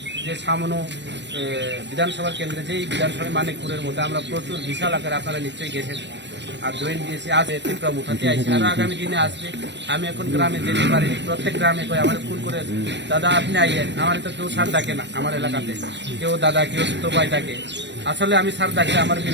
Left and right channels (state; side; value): late; left; 0.52 ms